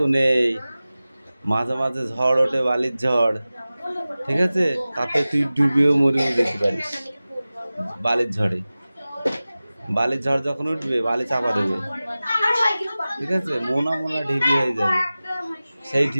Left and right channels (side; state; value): both; inverted; correlation -0.97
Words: নেই। মাঝে মাঝে ঝড় ওঠে, বালির ঝড়, ঠিক আছে, তাতে তুই ডুবেও মরেও যেতে পারিস বালির ঝড়ে। বালির ঝড় যখন উঠবে বালি চাপা দেবে, ঠিক আছে, মোনা মোনা ঢিপি হয়ে যাবে। সেই